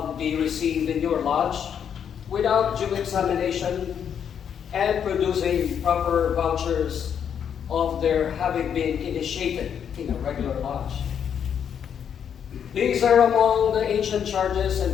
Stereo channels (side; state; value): right; quieter; 8.2 dB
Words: be received in your lodge without due examination and producing proper vouchers of their having been initiated in a regular lodge. These are among the ancient charges